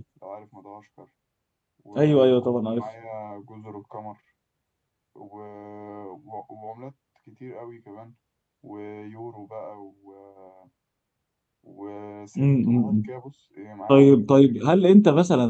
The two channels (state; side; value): identical; both; correlation 1.00